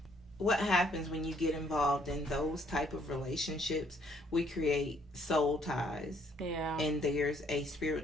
What happens when you get involved in those type of relationships? We create soul ties. Yeah. And there's a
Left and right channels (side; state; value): both; normal; correlation 0.66